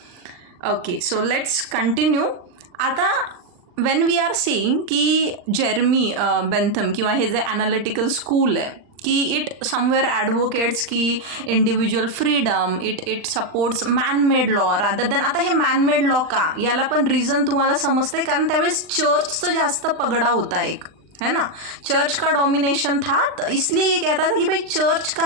Okay, so let's continue. आता वेन वी आर सेईंग की जेरमी बेंथम किंवा हे जे ॲनालिटिकल स्कूल आहे की इट समवेअर ॲडव्होकेट्स की individual freedom, it supports man-made law rather than. आता हे मॅनमेड लॉ का, याला पण रिझन तुम्हाला समजते, कारण त्यावेळेस चर्चचं जास्त पगडा होता एक, है ना. चर्च का डोमिनेशन था, तो इसलिए ये कहता था कि भाई चर्च का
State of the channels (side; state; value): left; late; 39 ms